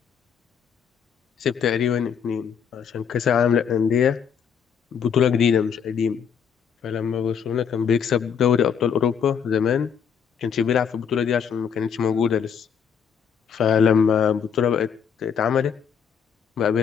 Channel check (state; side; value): quieter; right; 7.3 dB